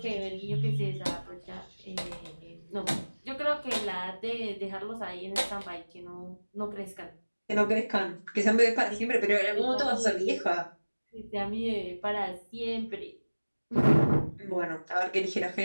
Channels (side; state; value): both; inverted; correlation -1.00